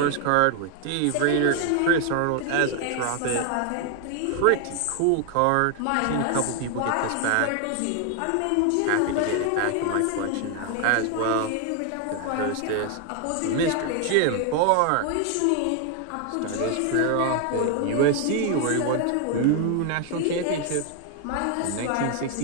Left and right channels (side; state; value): both; different; correlation 0.00